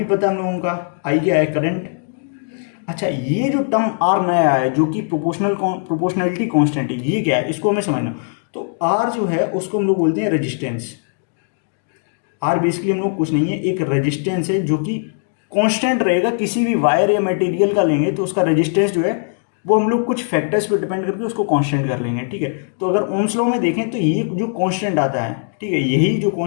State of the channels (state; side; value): silent; right; digital silence